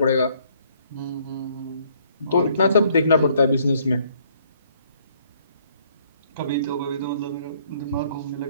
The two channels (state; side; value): inverted; both; correlation -0.65